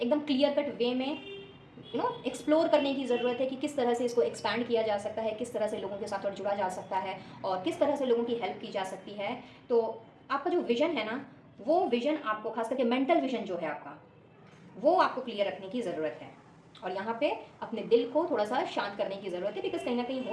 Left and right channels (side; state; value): both; identical; correlation 1.00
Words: क्लियर कट वे में एक्सप्लोर करने की ज़रूरत है कि किस तरह से इसको एक्सपैंड किया जा सकता है, किस तरह से लोगों के साथ और जुड़ा जा सकता है, और किस तरह से लोगों की हेल्प की जा सकती है। तो आपका जो विज़न है ना, वो विज़न आपको, खास करके मेंटल विज़न जो है आपका, वो आपको क्लियर रखने की ज़रूरत है। और यहाँ पे अपने दिल को थोड़ा सा शांत करने की ज़रूरत है, बिकॉज कहीं ना कहीं हो